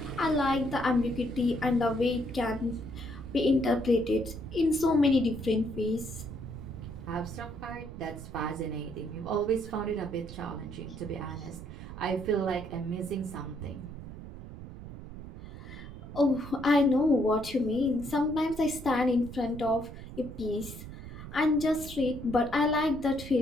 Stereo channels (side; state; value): right; noise; rumble, 12 dB below the sound